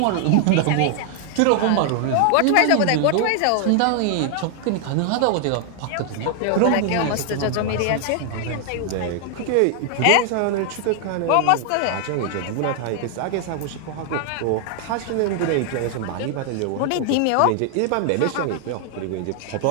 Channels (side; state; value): both; different; correlation 0.00